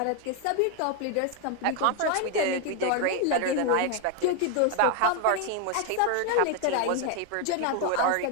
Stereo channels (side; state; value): both; different; correlation 0.01